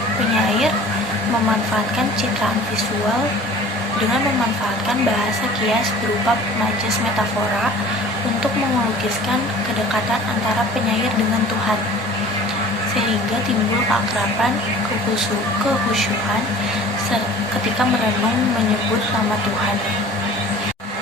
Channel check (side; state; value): both; normal; correlation 0.45